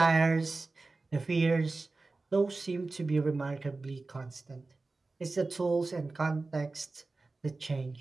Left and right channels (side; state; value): left; quieter; 3.5 dB